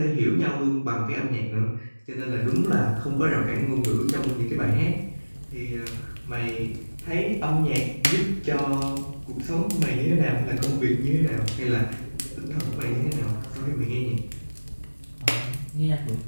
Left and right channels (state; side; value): inverted; both; correlation -1.00